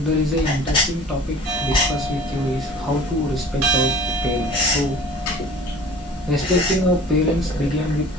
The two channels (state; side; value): normal; both; correlation 0.45